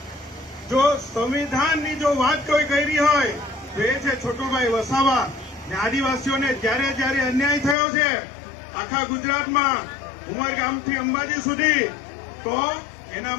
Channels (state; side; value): drops out; right; at 7.8 s